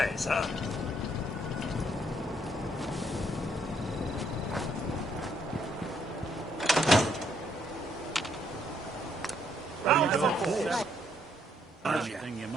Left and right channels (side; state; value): both; normal; correlation 0.71